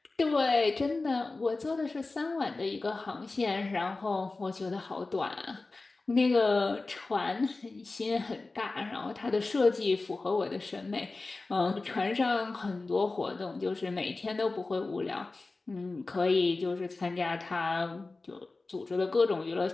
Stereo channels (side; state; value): right; quieter; 3.5 dB